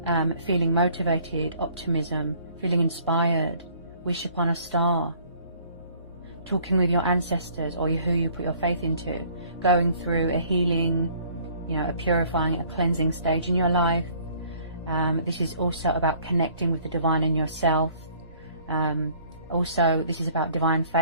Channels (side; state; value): both; inverted; correlation -0.57